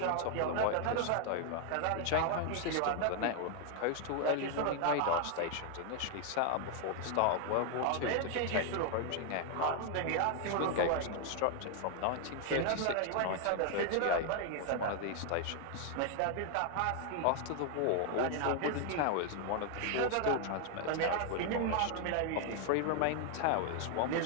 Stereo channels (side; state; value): both; different; correlation 0.00